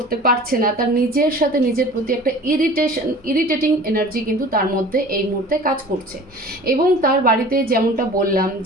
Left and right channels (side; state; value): both; normal; correlation 0.43